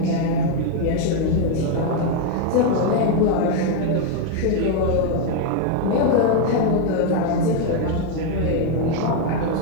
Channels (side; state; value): both; different; correlation 0.01